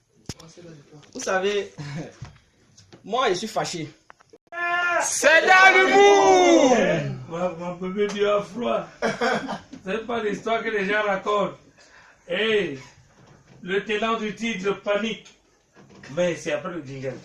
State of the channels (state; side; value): identical; both; correlation 1.00